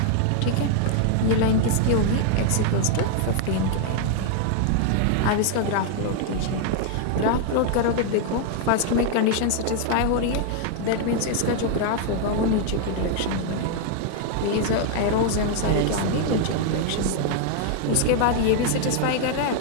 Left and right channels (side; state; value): both; different; correlation 0.00